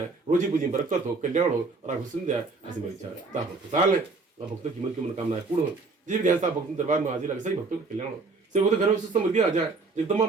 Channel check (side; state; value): left; quieter; 3.9 dB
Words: रोजी पूजी बरकत हो, कल्याण हो और आपको सुन जाए, ऐसी मेरी इच्छा है। आप खुशहाल है और भक्तों की मन की मनोकामनाएं पूर्ण हो, जिस भी ध्यान से आप भक्तों दरबार में हाजिर लगे सही भक्तों का कल्याण हो, सिर्फ वो तो घर में सुख समृद्धि आ जाए, एकदम